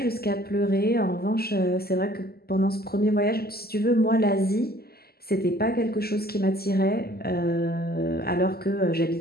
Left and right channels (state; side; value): late; right; 0.45 ms